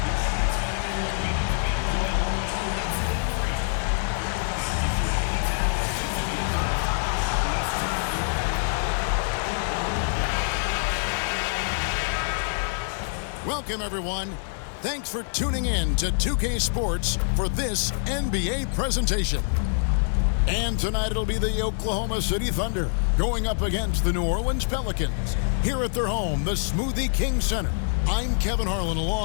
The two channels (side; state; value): right; silent; 58 dB below the other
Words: Welcome, everyone. Thanks for tuning in to 2K Sports for this NBA presentation. And tonight it'll be the Oklahoma City Thunder going up against the New Orleans Pelicans here at their home, the Smoothie King Center. I'm Kevin Harlan